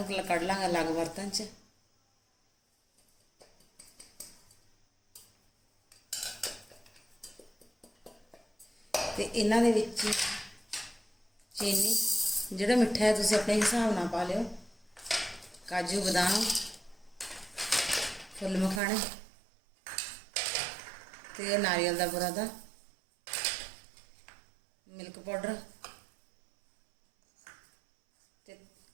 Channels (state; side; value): drops out; left; at 18.8 s